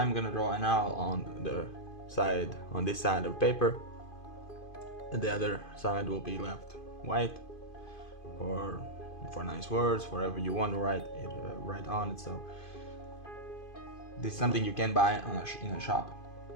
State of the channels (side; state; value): right; late; 2.5 ms